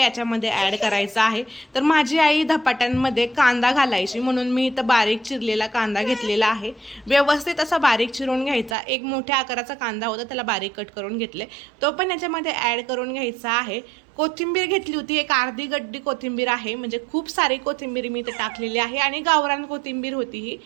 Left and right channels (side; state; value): left; drops out; at 8.8 s